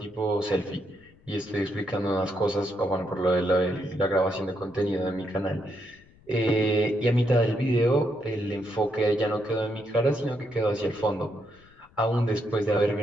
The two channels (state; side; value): noise; left; rumble, 28 dB below the sound